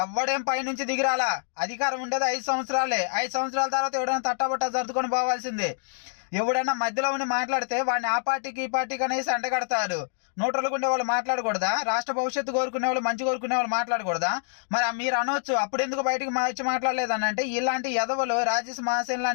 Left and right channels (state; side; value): silent; right; digital silence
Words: ఎవడేం పైనుంచి దిగిరాలా. అధికారం ఉండేది 5 సంవత్సరాలే. 5 సంవత్సరాల తర్వాత ఎవడైనా తట్టబట్ట సర్దుకొని పోవాల్సిందే. ఎవడైనా మధ్యలో ఉండి మాట్లాడితే వాడిని ఆ పార్టీకి ఈ పార్టీకి అనేసి అంటగడతారు. నోట్రలుకుండే వాళ్ళు మాట్లాడకూడదా? రాష్ట్ర భవిష్యత్తు కోరుకునే వాళ్ళు, మంచి కోరుకునే వాళ్ళు మాట్లాడకూడదా? మరి మీరు అనొచ్చు, అప్పుడు ఎందుకు బయటకు వచ్చి మాట్లాడలేదని అంటే, ఇలాంటి ఎదవలు, రాజేష్ మహాసేన్